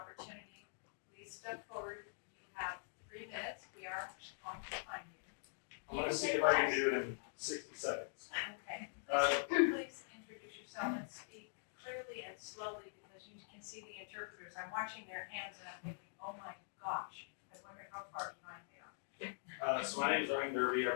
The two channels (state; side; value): silent; right; digital silence